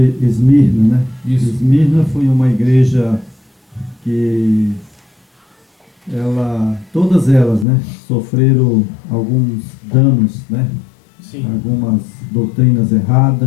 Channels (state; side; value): drops out; right; at 7.7 s